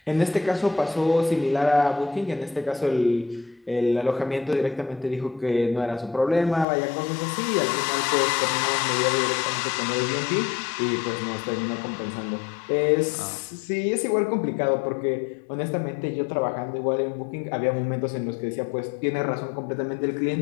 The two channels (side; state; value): right; drops out; at 6.7 s